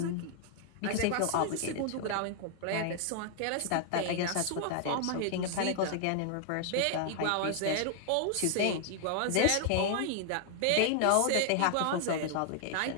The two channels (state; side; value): different; both; correlation 0.00